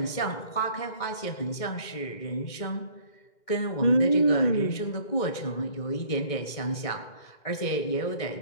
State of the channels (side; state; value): right; late; 2.2 ms